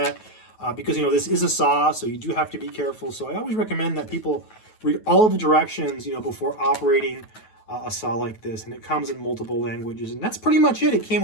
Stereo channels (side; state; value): right; late; 9.2 ms